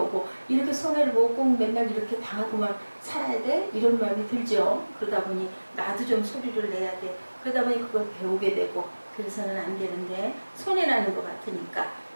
이렇게 손해를 보고 꼭 맨날 이렇게 당하고만 살아야 돼? 이런 마음이 들죠. 그러다 보니 나도 좀 소리를 내야 돼. 그러다 보니 그걸 배우게 되고 그래서는 안 되는데 손해나는 것 같으니까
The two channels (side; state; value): both; inverted; correlation -1.00